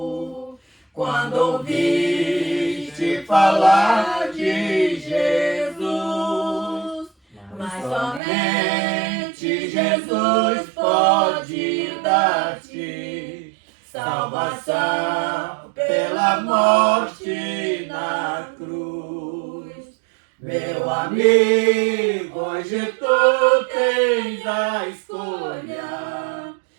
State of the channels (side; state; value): left; drops out; at 8.2 s